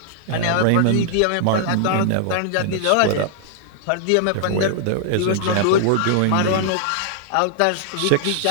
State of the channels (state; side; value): different; both; correlation -0.01